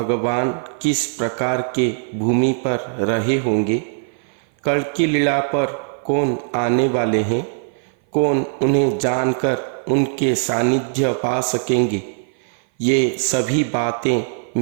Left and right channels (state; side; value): silent; left; 57 dB below the other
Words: किस प्रकार के भूमि पर रहे होंगे, कल्कि लीला पर कौन आने वाले हैं, कौन उन्हें जानकर उनके सानिध्य पा सकेंगे, ये सभी बातें